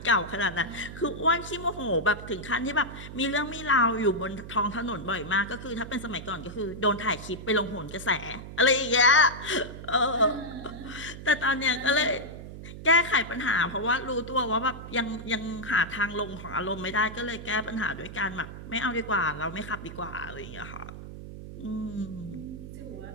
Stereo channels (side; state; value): right; noise; hum, 12 dB below the sound